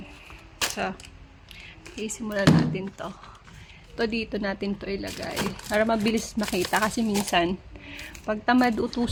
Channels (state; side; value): identical; both; correlation 1.00